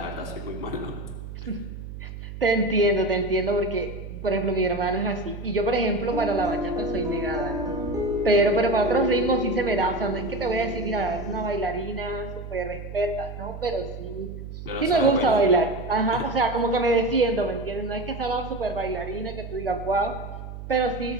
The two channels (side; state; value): right; noise; hum, 10 dB below the sound